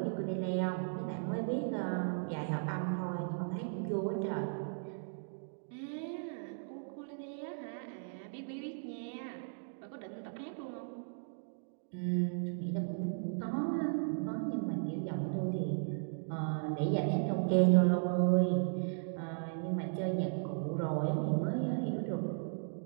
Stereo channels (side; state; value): left; silent; digital silence